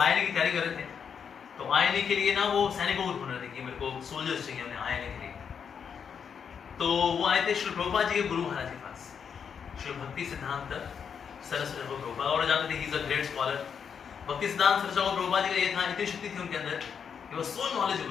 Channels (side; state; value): right; quieter; 7.1 dB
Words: की तैयारी कर रहे थे, तो आईएनए के लिए ना वो सैनिकों को ढूंढ रहे थे कि मेरे को सोल्जर्स चाहिए उन्हें आईएनए के लिए। तो वो आए थे श्री प्रभुपाद जी के गुरु महाराज के पास, श्री भक्ति सिद्धांत सरस्वती प्रभुपाद, और जानते थे he is a great scholar. भक्ति सिद्धांत सरस्वती प्रभुपाद जी का ये था, इतनी शक्ति थी उनके अंदर, ही वाज सो